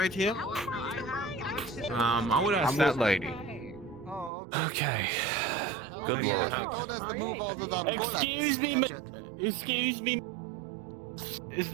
here? I would ask that lady. Okay. Good lord. Excuse me, excuse me. Is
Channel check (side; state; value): left; drops out; at 4.3 s